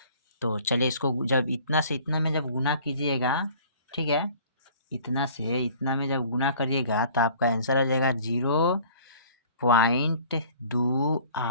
तो चलिए इसको जब इतना से इतना में जब गुना कीजिएगा, ठीक है, इतना से इतना में जब गुना करिएगा तो आपका आंसर आ जाएगा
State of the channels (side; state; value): both; inverted; correlation -0.50